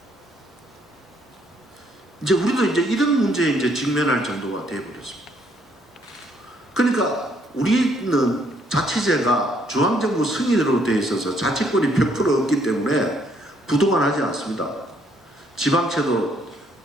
이제 우리도 이제 이런 문제에 이제 직면할 정도가 되어버렸습니다. 그러니까 우리는 자치제가 중앙정부 승인으로 되어 있어서 자치권이 100% 없기 때문에 부도가 나지 않습니다. 지방채도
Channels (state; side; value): normal; both; correlation 0.68